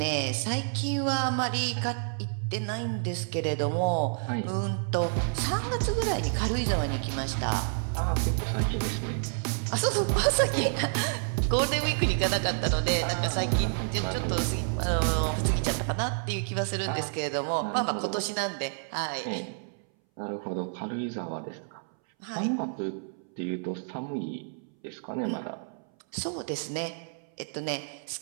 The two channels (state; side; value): silent; left; 58 dB below the other